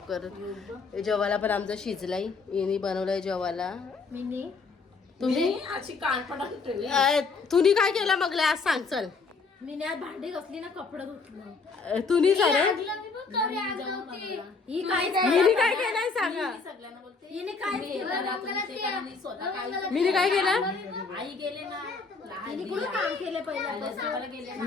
करत. जेवायला पण आमचा शिजलाय, यांनी बनवलंय जेवायला. तुम्ही अशी कानपडा ठेवली. तुम्ही काय केलं मग आज सांग चल. मी आज भांडी घासली ना, कपडे धुतलं. तुम्ही सर ही काय मी काय केलंय सांगा. सगळ्यांना बोलते हिने काय केलं. स्वतः काय मी काय केलं. आई गेले ना, हिने कुठं काम केले पहिल्यापासून गेले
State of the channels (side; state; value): right; quieter; 4.5 dB